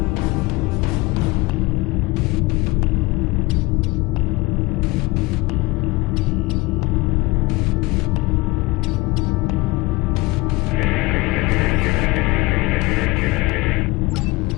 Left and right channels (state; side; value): quieter; right; 22.3 dB